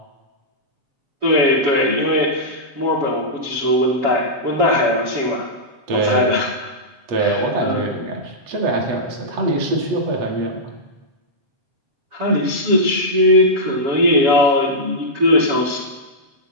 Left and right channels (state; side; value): late; left; 7.2 ms